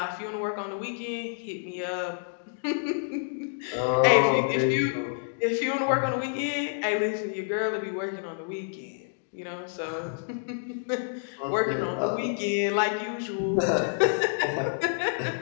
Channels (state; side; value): silent; right; digital silence